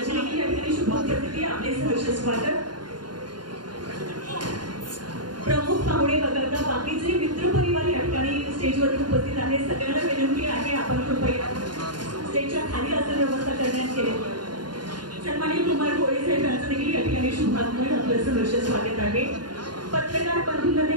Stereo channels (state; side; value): late; left; 0.70 ms